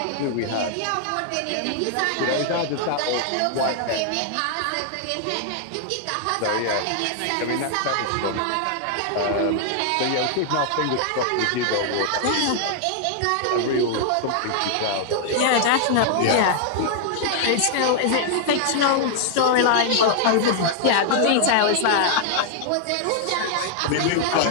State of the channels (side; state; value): both; different; correlation 0.00